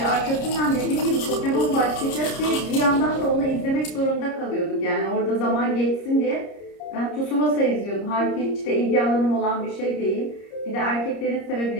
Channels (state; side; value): late; right; 30 ms